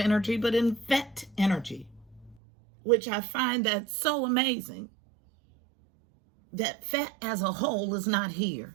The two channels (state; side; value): drops out; left; at 2.4 s